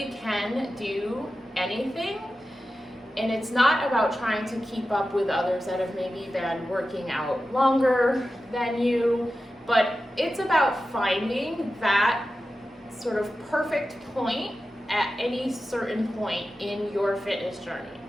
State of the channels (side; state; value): both; normal; correlation 0.93